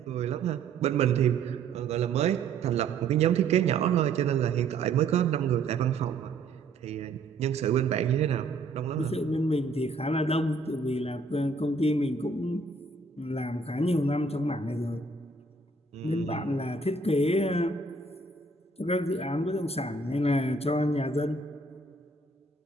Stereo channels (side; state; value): left; quieter; 3.7 dB